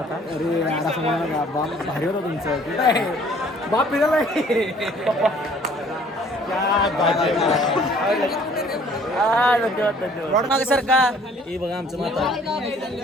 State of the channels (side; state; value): both; normal; correlation 0.56